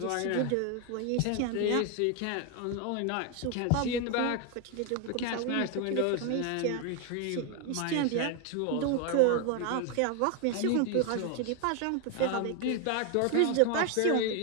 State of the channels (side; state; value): both; different; correlation 0.01